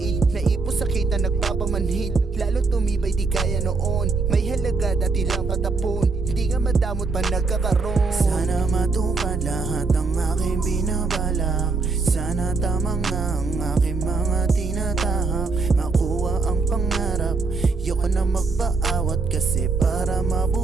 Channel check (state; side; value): quieter; left; 4.1 dB